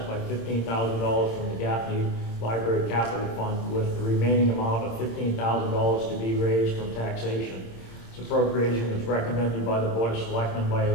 by $15,000 from the Gaffney Library Capital Fund, with the remaining amount of $15,000 to be raised from taxation. This appropriation is recommended by the Board of Selectmen by a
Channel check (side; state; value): right; late; 26 ms